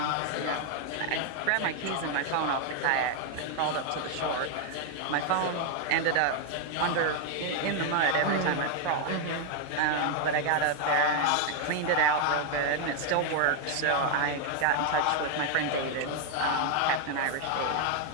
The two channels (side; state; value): both; different; correlation 0.00